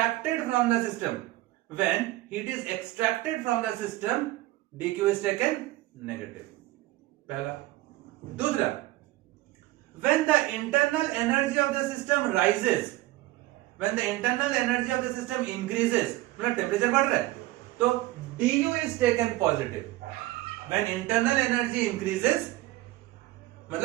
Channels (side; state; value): left; quieter; 17.8 dB